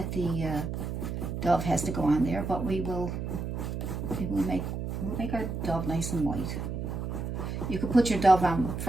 the dove has to go on there, but we'll make our dove nice and white. You could put your dove on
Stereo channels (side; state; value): right; noise; hum, 4 dB below the sound